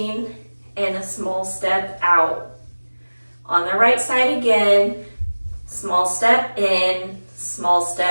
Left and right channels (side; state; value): both; inverted; correlation -1.00